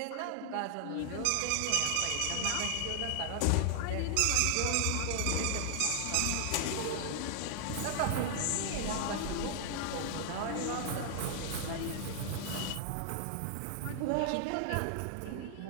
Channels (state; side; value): different; both; correlation 0.00